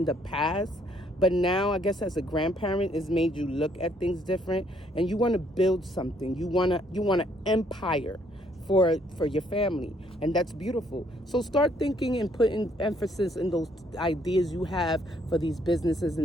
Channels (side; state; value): both; normal; correlation 0.67